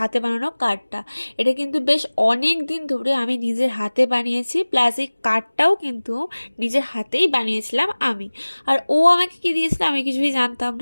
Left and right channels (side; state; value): both; inverted; correlation -1.00